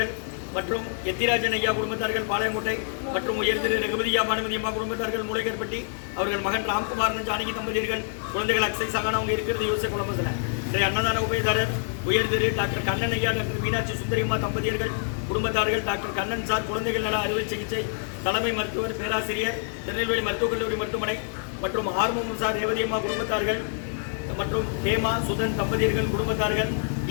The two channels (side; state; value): right; silent; digital silence